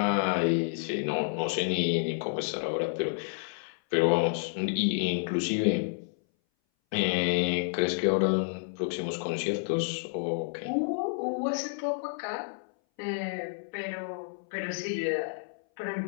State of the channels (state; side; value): silent; right; 58 dB below the other